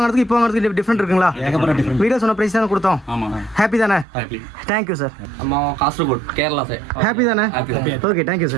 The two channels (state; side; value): drops out; left; at 4.0 s